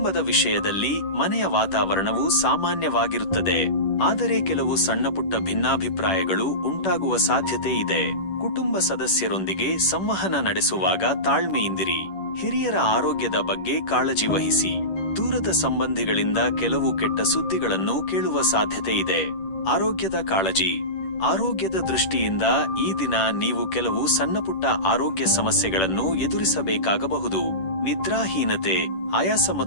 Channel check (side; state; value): right; late; 10 ms